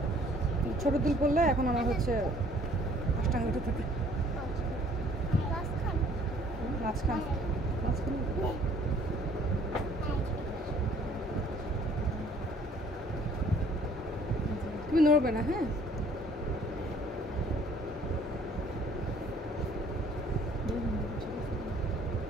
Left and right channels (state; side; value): normal; both; correlation 0.57